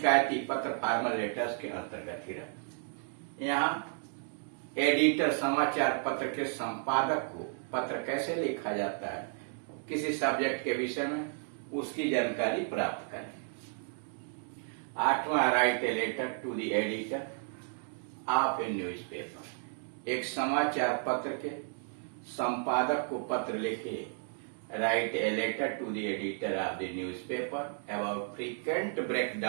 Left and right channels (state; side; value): silent; left; 56 dB below the other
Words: पत्र फॉर्मल लेटर्स के अंतर्गत ही रहते हैं। यहाँ एडिटर समाचार पत्र के संपादक को पत्र कैसे लिखा जाता है, किसी सब्जेक्ट के विषय में, उसकी जानकारी प्राप्त करें। 8वां, write a letter to the editor of a newspaper. एक समाचार पत्र के संपादक को पत्र लिखिए। Write a letter to the editor of the newspaper about frequent